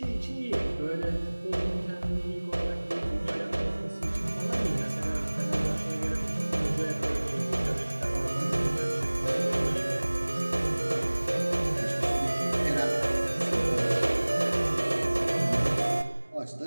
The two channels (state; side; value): inverted; both; correlation -1.00